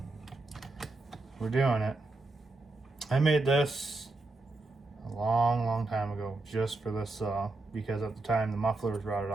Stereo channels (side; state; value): left; quieter; 3.1 dB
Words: we're doing it. I made this a long time ago just for this saw, because at the time the muffler was rotted